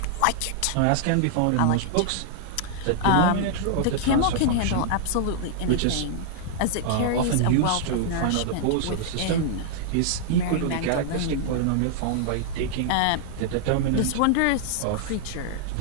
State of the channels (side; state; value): both; different; correlation -0.01